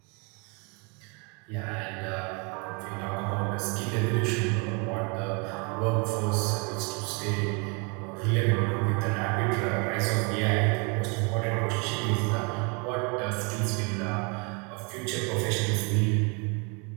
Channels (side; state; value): left; quieter; 33.1 dB